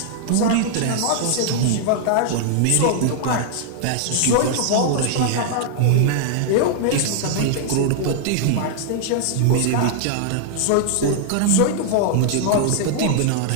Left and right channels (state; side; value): different; both; correlation 0.00